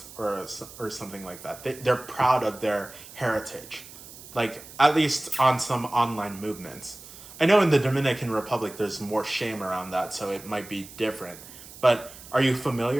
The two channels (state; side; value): noise; right; hiss, 17 dB below the sound